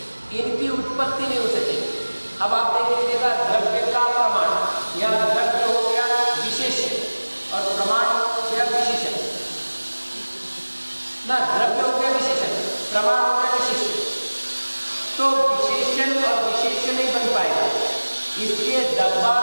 इनकी उत्पत्ति नहीं हो सकेगी। अब आप देख लीजिएगा, द्रव्य का प्रमाण, या द्रव्य हो गया विशेष्य और प्रमाण हो गया विशेषण ना, द्रव्य हो गया विशेषण, प्रमाण हो गया विशेष्य, तो विशेषण और विशेष्य नहीं बन पाएगा। इसलिए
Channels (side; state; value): both; inverted; correlation -1.00